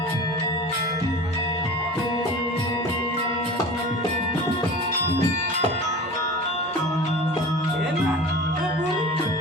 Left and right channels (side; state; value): both; normal; correlation 0.36